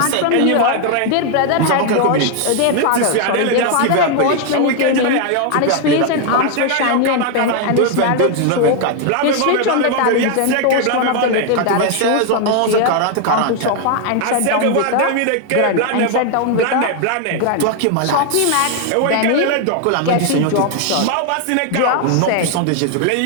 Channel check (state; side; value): different; both; correlation 0.01